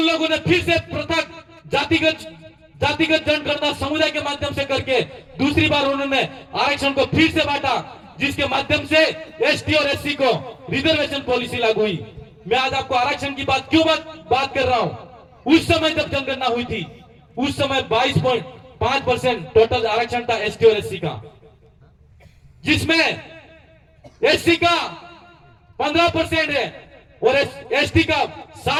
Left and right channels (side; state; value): both; identical; correlation 1.00